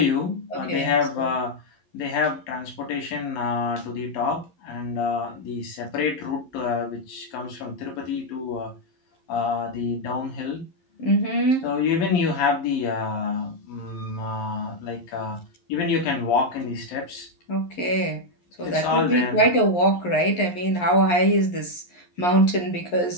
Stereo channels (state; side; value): late; right; 11 ms